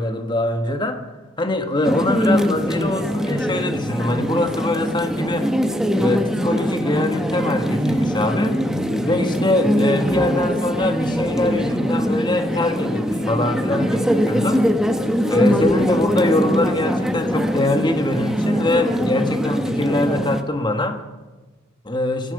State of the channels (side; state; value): both; normal; correlation 0.75